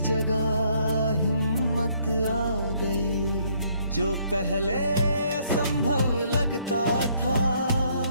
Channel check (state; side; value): inverted; both; correlation -0.67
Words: जगह हिम्मत आ गई। जो पहले असंभव लगता था,